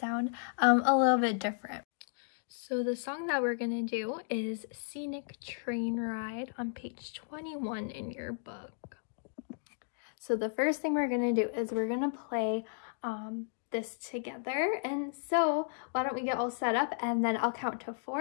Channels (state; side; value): silent; right; digital silence